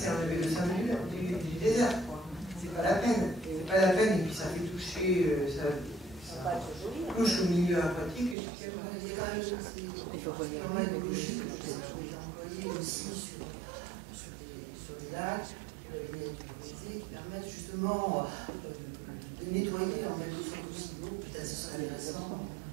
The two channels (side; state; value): left; drops out; at 8.3 s